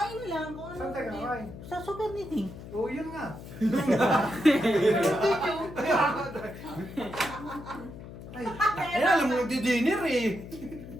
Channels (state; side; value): noise; left; hum, 13 dB below the sound